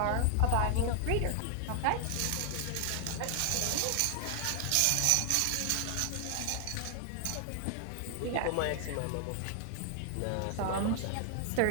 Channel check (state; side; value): different; both; correlation 0.00